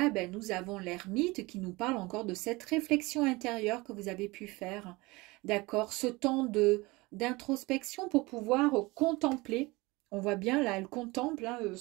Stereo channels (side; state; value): left; quieter; 22.9 dB